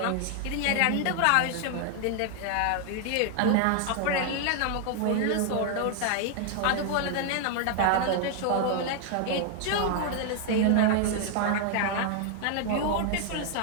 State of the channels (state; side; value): different; both; correlation 0.00